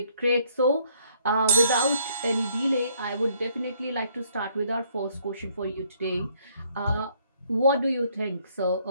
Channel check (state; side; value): inverted; both; correlation -0.66